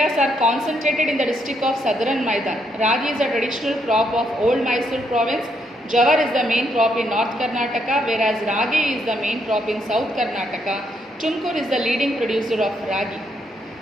are concentrated in the district of Southern Maidan. Ragi is a traditional crop of old Mysore province. Jawar is the main crop in North Karnataka, whereas ragi is the main crop in South Karnataka. Tumkur is the leading producer of ragi.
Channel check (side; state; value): both; normal; correlation 0.75